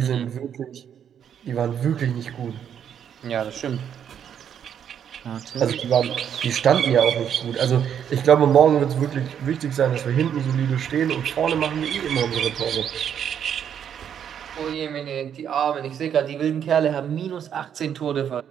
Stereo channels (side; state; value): left; quieter; 8.7 dB